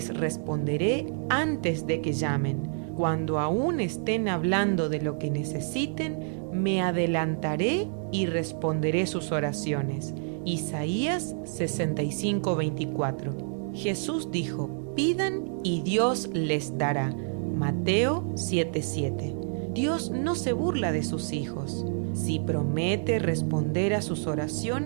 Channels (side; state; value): left; silent; 59 dB below the other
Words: responderé antes de que llamen. Cuando aún estén hablando de lo que necesiten, me adelantaré y responderé sus oraciones. Isaías 65:24. Jesús dijo, pidan y Dios les dará. Mateo 7:7. Dios no se burla de sus hijos. Si promete responder a sus